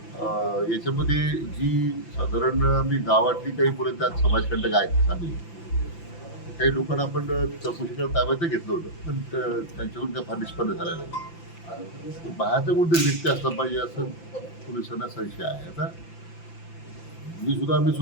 याच्यामध्ये जी साधारण मी गावातली काही मुलं त्यात समाजकंटक आहेत चांगली, काही लोकांना आपण चौकशीला ताब्यात घेतलं होतं, पण त्यांच्याकडून काय फार निष्पन्न झालं नाही. बाहेरचा कोणतरी व्यक्ती असला पाहिजे असं पोलिसांना संशय आहे. आता आम्ही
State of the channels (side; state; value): right; late; 5.9 ms